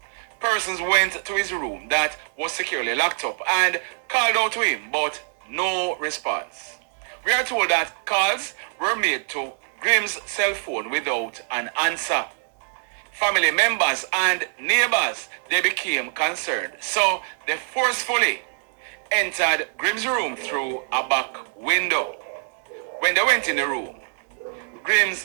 Persons went to his room that was securely locked up and called out to him, but no response. We are told that calls were made to Grim's cell phone without an answer. Family members and neighbors, they became concerned, so they forcefully entered Grim's room through a back window. When they went in the room,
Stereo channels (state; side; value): silent; left; 60 dB below the other